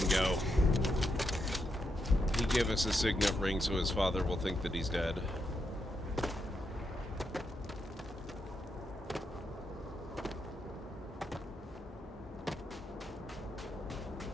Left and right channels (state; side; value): normal; both; correlation 0.82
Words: go. He gave us a signet ring so his father will think that he's dead.